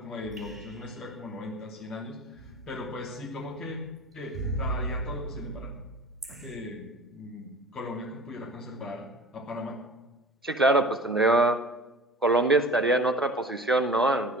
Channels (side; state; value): both; normal; correlation 0.41